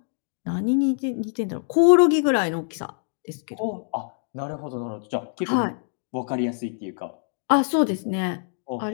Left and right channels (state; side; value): silent; right; digital silence